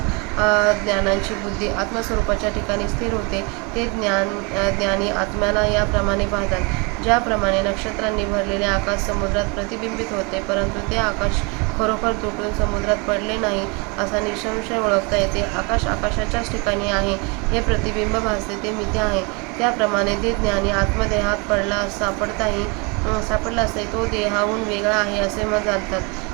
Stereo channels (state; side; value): quieter; left; 30.4 dB